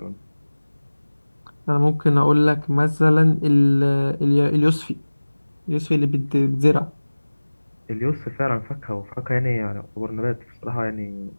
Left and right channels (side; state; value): both; inverted; correlation -1.00